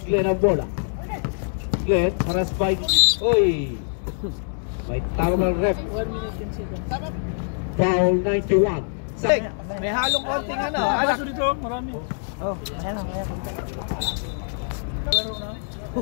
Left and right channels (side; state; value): right; silent; digital silence